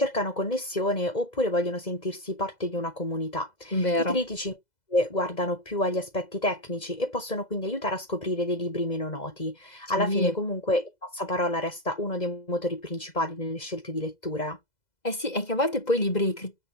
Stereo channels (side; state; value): right; late; 2.0 ms